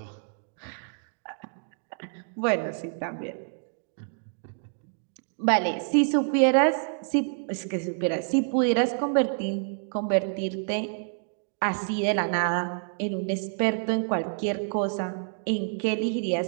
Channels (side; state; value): left; silent; digital silence